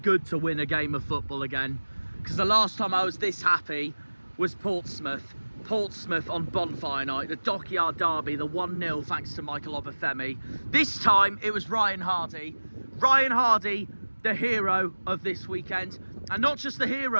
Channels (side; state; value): both; inverted; correlation -1.00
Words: to win a game of football again, because the last time I was this happy was Portsmouth on Bonfire Night, the Dockyard Derby, the 1-0 thanks to Michael Obafemi. This time it was Ryan Hardie, the hero of this weekend, and not just the